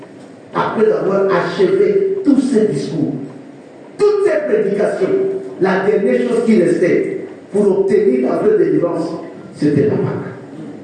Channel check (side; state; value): both; identical; correlation 1.00